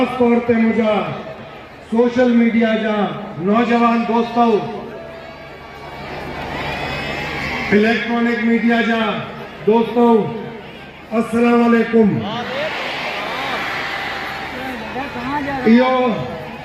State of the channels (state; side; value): identical; both; correlation 1.00